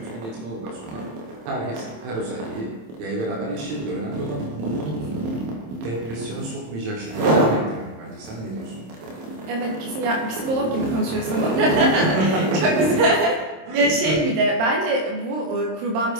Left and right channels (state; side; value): late; left; 26 ms